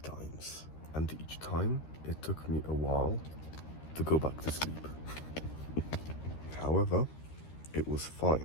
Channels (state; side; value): late; right; 13 ms